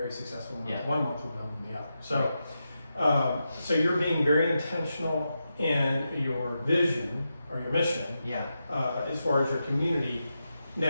successful month, one month will build on the other. So, so you're being very intentional in your vision or your mission. Yeah. As far as your community.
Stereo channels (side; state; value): both; inverted; correlation -0.88